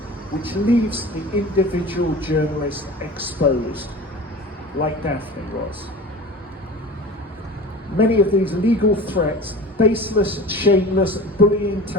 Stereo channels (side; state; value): both; normal; correlation 0.37